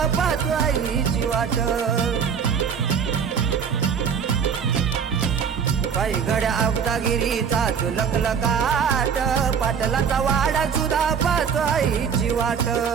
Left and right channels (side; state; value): left; quieter; 7.0 dB